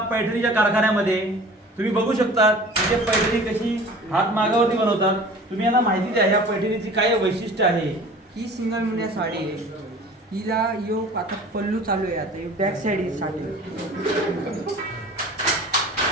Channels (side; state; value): both; normal; correlation 0.44